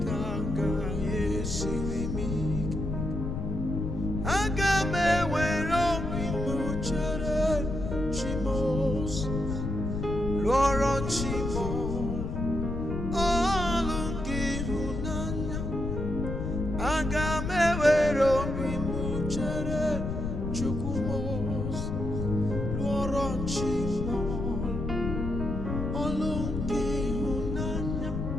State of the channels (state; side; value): noise; left; rumble, 3 dB below the sound